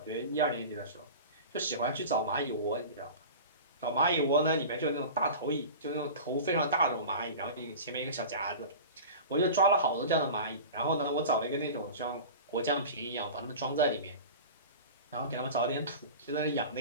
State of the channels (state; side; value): inverted; both; correlation -0.34